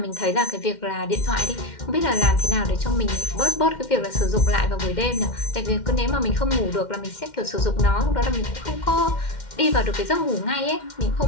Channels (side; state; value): right; late; 2.1 ms